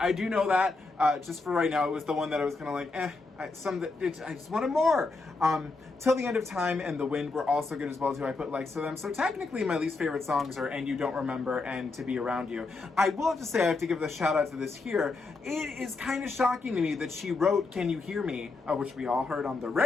do know that. Just for right now, it was the one that I was kind of like, I just wanted more. Till the End of Time and The Wind were also good as well too. I put likes to them. So technically my least favorite songs are And You Don't Remember and To Be Around You. I will have to say, I have to give the shout out to this here. It is kind of shocking to me that she wrote Can You Hear Me, which we all heard on the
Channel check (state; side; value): quieter; right; 3.7 dB